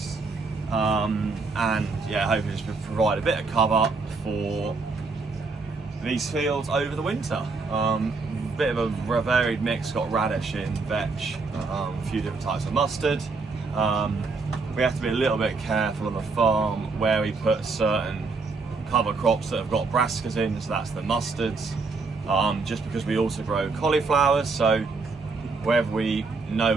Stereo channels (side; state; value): left; quieter; 4.1 dB